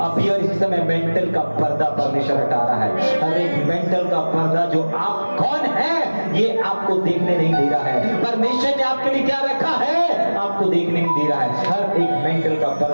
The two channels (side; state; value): both; inverted; correlation -1.00